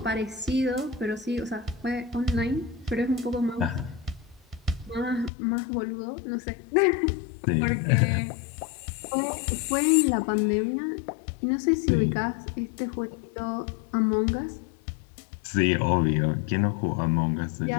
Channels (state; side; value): drops out; right; at 5.3 s